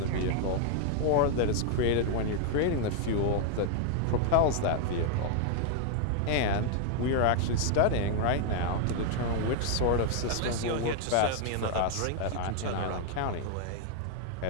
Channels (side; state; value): both; different; correlation 0.00